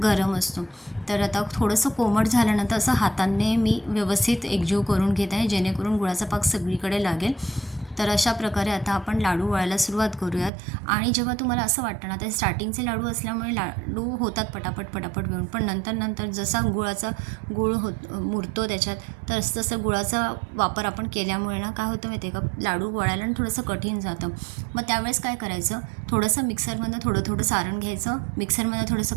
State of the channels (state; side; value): drops out; left; at 10.5 s